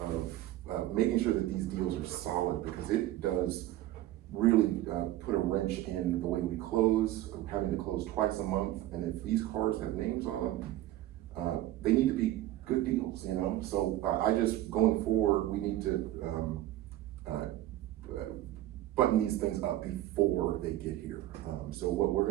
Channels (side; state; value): left; quieter; 14.8 dB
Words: making sure that these deals are solid, because it does really put a wrench in the way we close, having to close twice a month. And if these cars have names on them, they need to be good deals, you know? So I just, going forward, we need to button these things up before they get here. So what we're